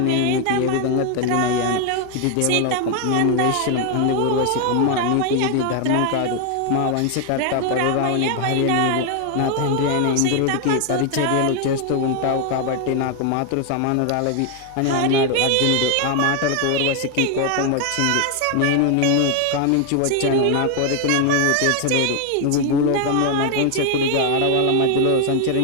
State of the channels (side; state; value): both; different; correlation 0.00